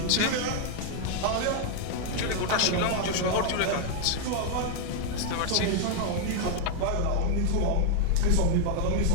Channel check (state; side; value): different; both; correlation 0.00